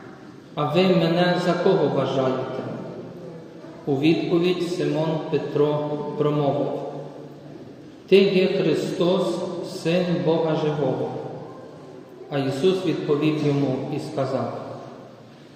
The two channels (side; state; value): both; identical; correlation 1.00